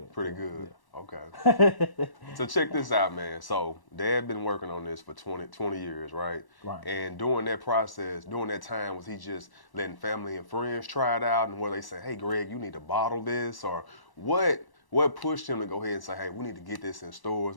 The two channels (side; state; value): right; late; 1.1 ms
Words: Pretty good. Yeah. Okay. So check this out, man. So Dad been working on this for 20 years, right? Right. And during that process, during that time, was he just letting family and friends try it out, and where they say, hey, Greg, you need to bottle this? Or what pushed him to go ahead and say, hey, we need to get this in stores,